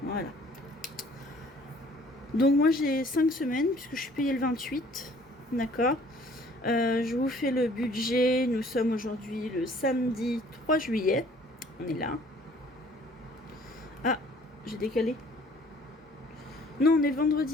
Voilà. Donc, moi, j'ai 5 semaines, puisque je suis payée le 28. D'accord. Je vous fais le budget. Nous sommes aujourd'hui le samedi 3 juillet. On est là. Ah, j'ai décalé. Non, on est le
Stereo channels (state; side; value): normal; both; correlation 0.56